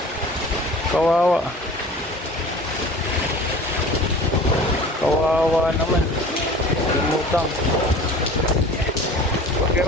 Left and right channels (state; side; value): normal; both; correlation 0.42